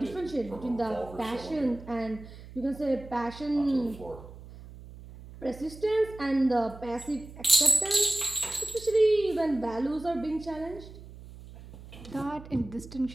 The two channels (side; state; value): right; noise; hum, 16 dB below the sound